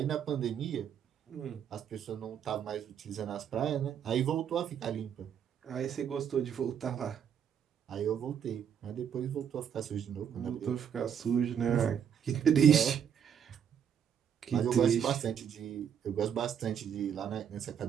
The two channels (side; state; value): left; quieter; 8.4 dB